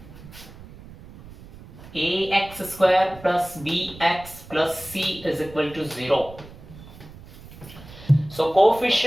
ax square plus bx plus c is equal to 0. So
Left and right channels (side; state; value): right; noise; rumble, 18 dB below the sound